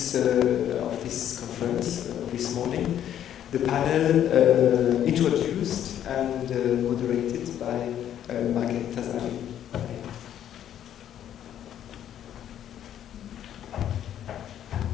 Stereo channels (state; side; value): quieter; right; 10.5 dB